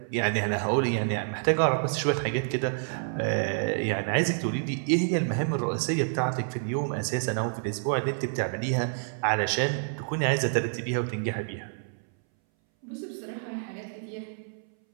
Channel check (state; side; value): silent; left; 59 dB below the other